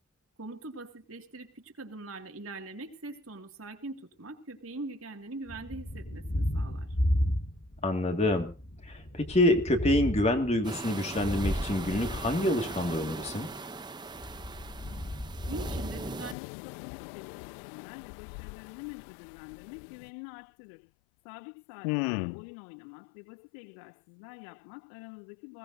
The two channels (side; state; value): right; drops out; at 16.4 s